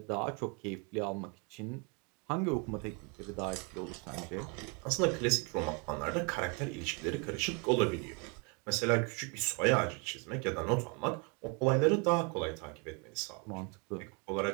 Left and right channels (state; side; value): quieter; left; 33.5 dB